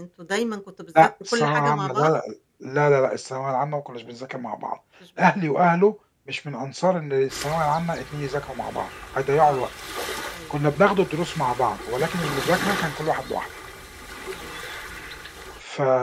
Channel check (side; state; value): both; identical; correlation 1.00